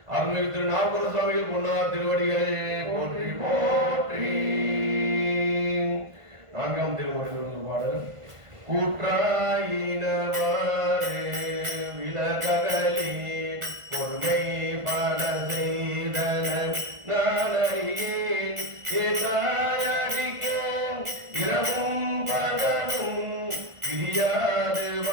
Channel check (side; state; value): left; late; 1.5 ms